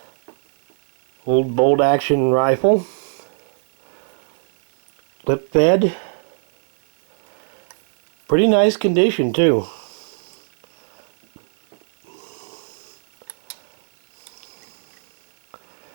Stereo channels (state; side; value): silent; left; digital silence